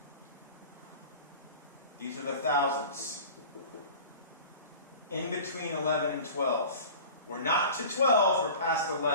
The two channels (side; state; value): both; inverted; correlation -0.39